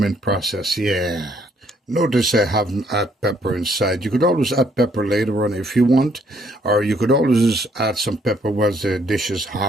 process. Yeah. Notice I haven't added pepper inside. You could always add pepper later on if you want, or you could always add some pepper while the dish is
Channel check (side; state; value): both; normal; correlation 0.67